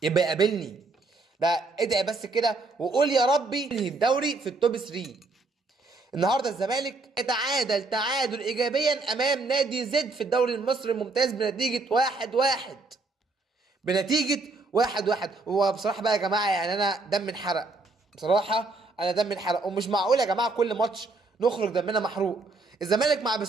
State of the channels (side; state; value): left; quieter; 3.5 dB